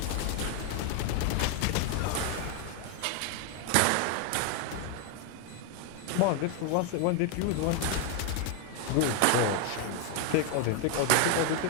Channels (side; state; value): both; different; correlation 0.00